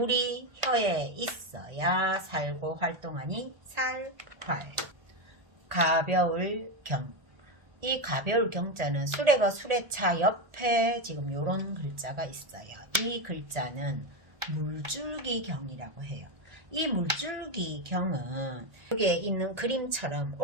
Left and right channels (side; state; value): left; late; 1.8 ms